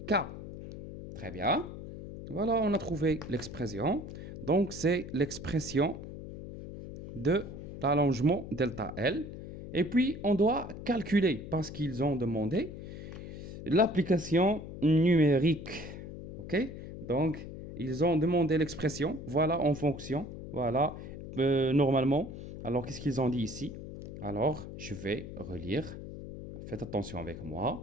K. Très bien. Voilà, on a trouvé l'expression. Donc, c'est l'expression de l'allongement delta L. Et puis, on doit calculer, parce qu'ils ont demandé, l'application numérique. OK? Donc, ils ont demandé l'expression. Voilà, en fonction. Voilà, normalement. Alors, qu'est-ce qu'ils ont dit ici? Alors, je vais relire. Faites attention avec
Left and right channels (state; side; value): noise; left; hum, 10 dB below the sound